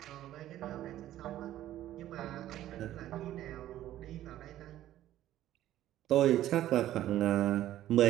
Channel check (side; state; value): left; quieter; 13.2 dB